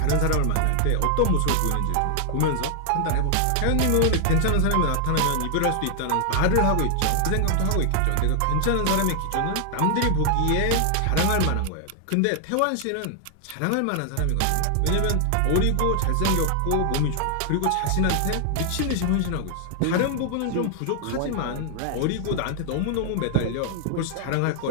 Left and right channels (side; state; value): both; different; correlation 0.00